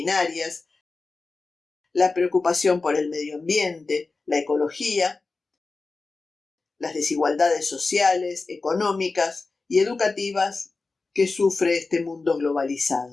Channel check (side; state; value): right; quieter; 3.8 dB